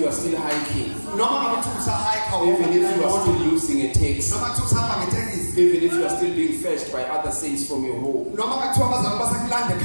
are still hiking, even if you are still losing a taxi, even if you are still being fetched by other saints from your home, but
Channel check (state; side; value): inverted; both; correlation -1.00